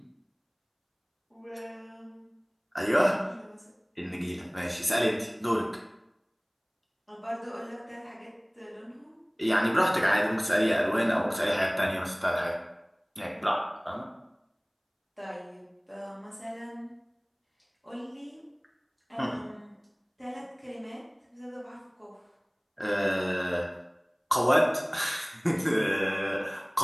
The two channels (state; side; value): identical; both; correlation 1.00